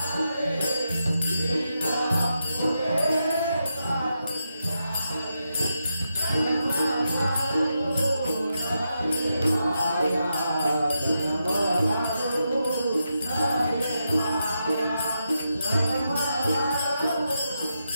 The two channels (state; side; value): inverted; both; correlation -0.86